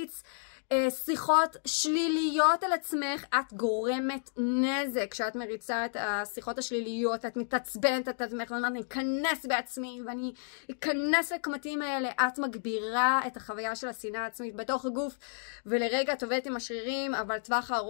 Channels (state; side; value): silent; right; digital silence